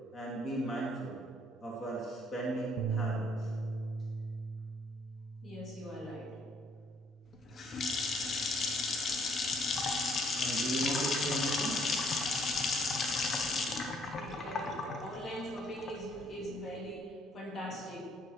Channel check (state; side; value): normal; both; correlation 0.66